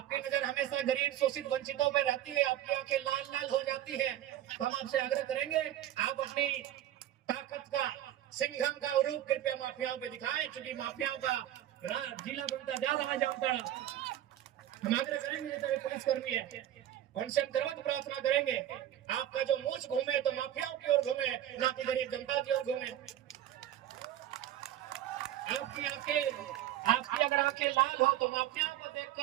नजर हमेशा गरीब, शोषित, वंचितों पर रहती है, आपकी आंखें लाल लाल हो जाती है। तो हम आपसे आग्रह करेंगे, आप अपनी ताकत का, सिंघम का रूप कृपया माफियाओं पे दिखाएं, क्योंकि माफियाओं का जिला बनता जा रहा है जामताड़ा। हम आग्रह करेंगे जैसे पुलिसकर्मी है, उनसे हम करवत प्रार्थना करेंगे, आपका जो मूछ घूमे तो माफियाओं की ओर घूमे, ना कि गरीब जनता की ओर घूमे। आपकी अगर आंखें लाल हो तो माफियाओं को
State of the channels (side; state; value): left; quieter; 12.4 dB